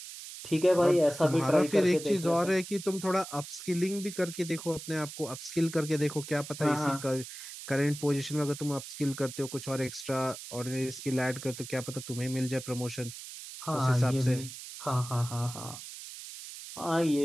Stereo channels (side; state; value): right; noise; hiss, 12 dB below the sound